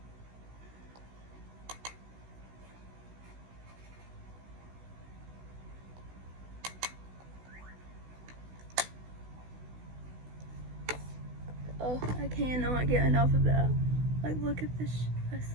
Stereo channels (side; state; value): left; late; 16 ms